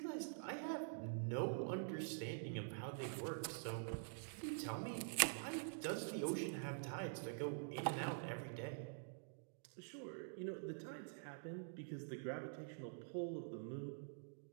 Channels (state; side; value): silent; left; digital silence